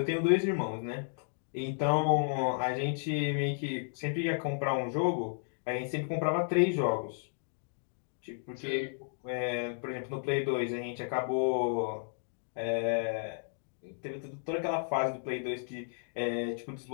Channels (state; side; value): silent; right; digital silence